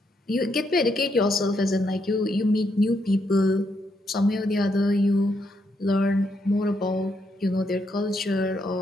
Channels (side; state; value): both; normal; correlation 0.78